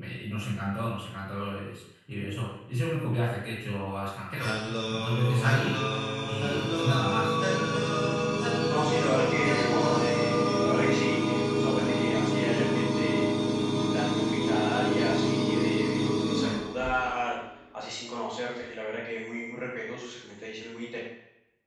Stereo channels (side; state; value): both; identical; correlation 1.00